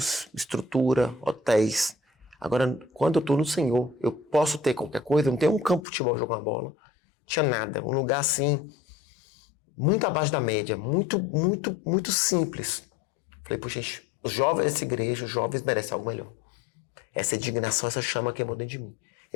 estrutura, hotéis. Agora, quando eu tô no Senhor, eu posso ter qualquer coisa, eu não tenho um campo de futebol jogar uma bola, não tinha nada, um lugar assim, muito abaixo da média, muito, muito, muito simples. Falei, puxa, gente, os jovens dessa igreja, os jovens merecem algo melhor. Essa indignação, essa chama queimou dentro de mim.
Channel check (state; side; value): drops out; right; at 5.9 s